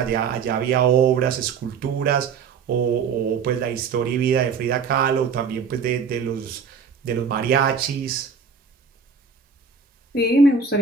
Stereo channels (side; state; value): left; quieter; 5.8 dB